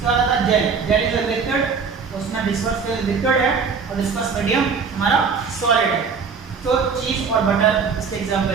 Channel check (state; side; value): quieter; left; 5.6 dB